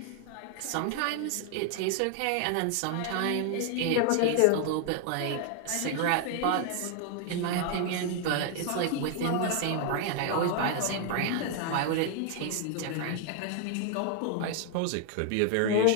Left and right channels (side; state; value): both; different; correlation 0.00